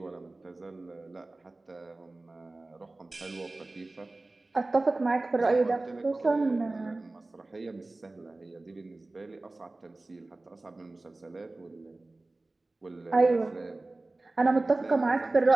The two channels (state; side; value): quieter; left; 3.0 dB